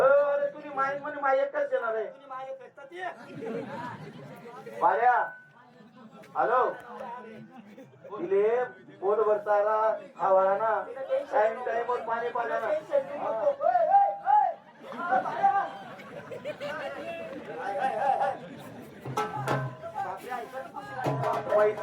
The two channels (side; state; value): both; identical; correlation 1.00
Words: तुझी माई म्हणे माई एकच येणार आहे तुझी माय पेटतात ते बाऱ्या हॅलो तिले पोट भरताला खावाला ना टाइम टाइम वर पाणी पाण्याला